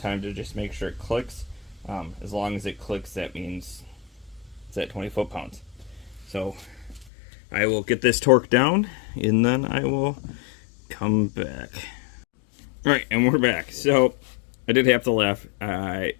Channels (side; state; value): right; drops out; at 7.1 s